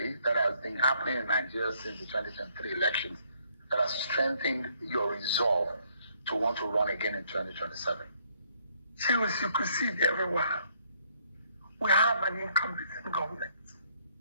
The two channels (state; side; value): inverted; both; correlation -0.67